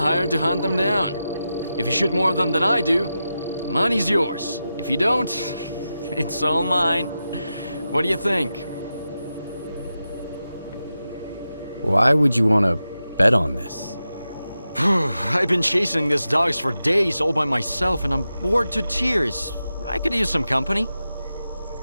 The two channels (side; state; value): both; inverted; correlation -0.91